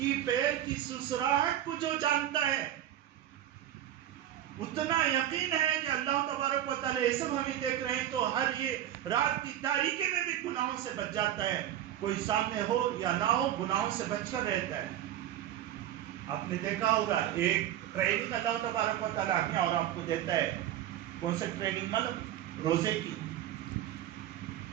پیر کی سسراہٹ کو جو جانتا ہے، اتنا یقین ہے کہ اللہ تبارک و تعالی یہ سب ہمیں دیکھ رہے ہیں، تو ہر یہ رات کی تاریکی میں بھی گناہوں سے بچ جاتا ہے۔ کوئی سامنے ہو یا نہ ہو، گناہوں سے بچ کر رہتا ہے۔ آپ نے دیکھا ہوگا ایک ٹریننگ اللہ تبارک و تعالی اپنے اور آپ کو دیتا ہے۔ کون سے ٹریننگ؟ مطلب روزے کی۔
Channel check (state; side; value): quieter; left; 11.9 dB